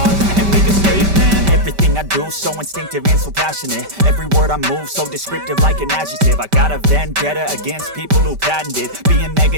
up and make a statement. Everything I do so instinctive and so passionate. Every word I move so descriptive like an adjective. I got a vendetta against people who patented being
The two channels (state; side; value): late; left; 5.1 ms